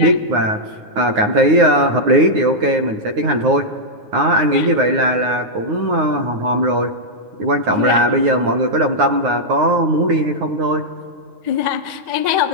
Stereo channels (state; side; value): late; left; 9.6 ms